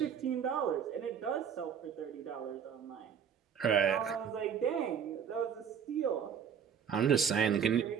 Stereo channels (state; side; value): quieter; left; 7.7 dB